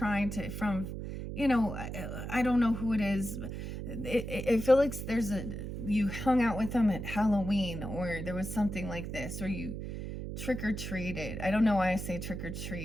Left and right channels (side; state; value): right; noise; hum, 6 dB below the sound